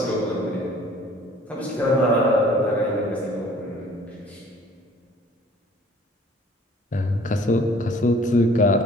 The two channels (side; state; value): both; normal; correlation 0.53